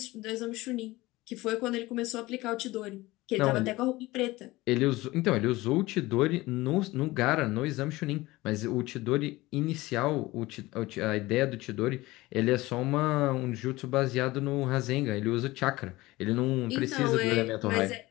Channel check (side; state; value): right; quieter; 19.6 dB